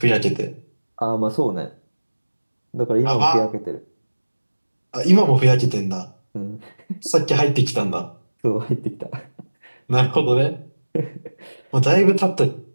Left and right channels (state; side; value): inverted; both; correlation -1.00